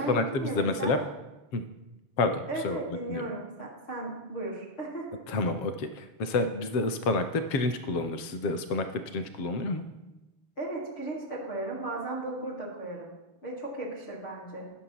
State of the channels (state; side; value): late; right; 7.4 ms